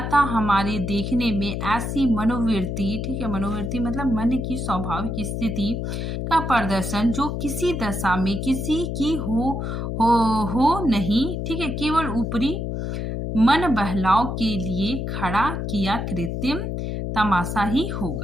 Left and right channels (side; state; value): left; noise; hum, 3 dB below the sound